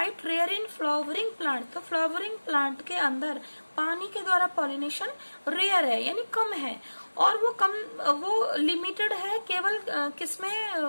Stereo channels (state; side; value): inverted; both; correlation -1.00